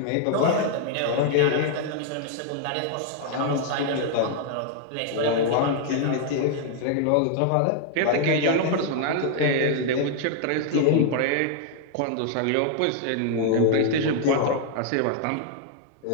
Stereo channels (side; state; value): both; different; correlation 0.00